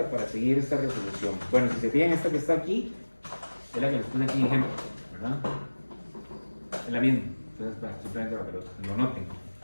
para seguir esta resolución. Bueno, si se fijan, esta que está aquí es la que nos pone aquí en ejemplo, ¿verdad? Es la misma. Entonces, simplemente para que lo noten.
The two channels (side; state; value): both; inverted; correlation -1.00